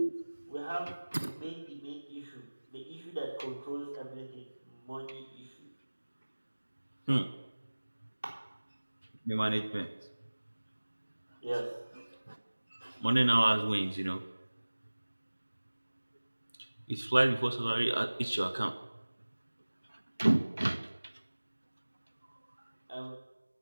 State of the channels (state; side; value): inverted; both; correlation -1.00